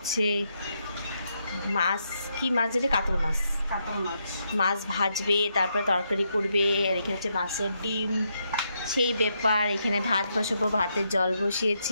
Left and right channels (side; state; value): both; inverted; correlation -0.79